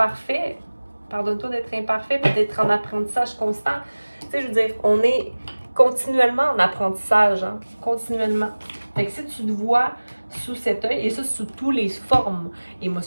Pardonne-toi d'être imparfait et d'être en apprentissage constant. Tu sais, je veux dire, on est continuellement en apprentissage, hein? Continuellement. Fait que si tu te vois sous cet œil, et ça sous toutes les formes,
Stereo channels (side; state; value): both; inverted; correlation -1.00